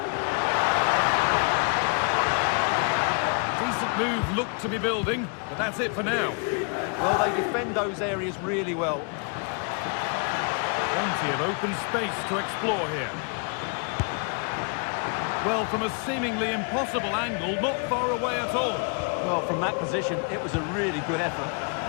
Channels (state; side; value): quieter; right; 38.3 dB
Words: Decent move looked to be building, but that's it for now. Well, they defend those areas really well. Plenty of open space to explore here. Well, from a seemingly impossible angle, not far away at all. Well, from that position, it was a really good effort.